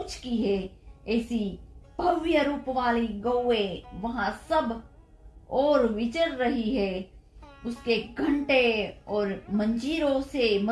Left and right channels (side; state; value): both; identical; correlation 1.00